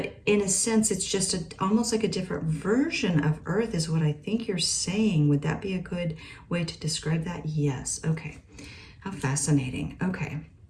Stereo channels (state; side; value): identical; both; correlation 1.00